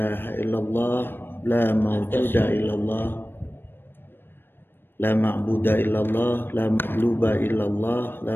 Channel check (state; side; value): late; right; 0.099 ms